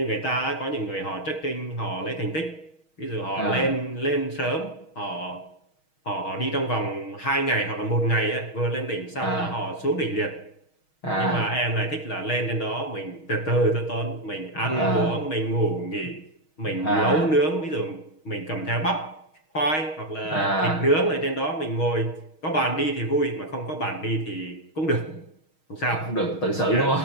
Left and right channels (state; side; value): late; right; 6.3 ms